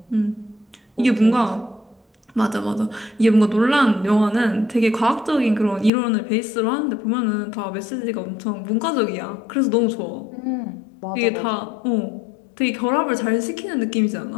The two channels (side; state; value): right; drops out; at 5.9 s